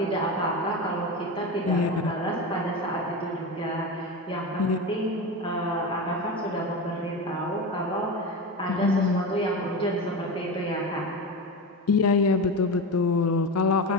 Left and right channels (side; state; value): both; normal; correlation 0.22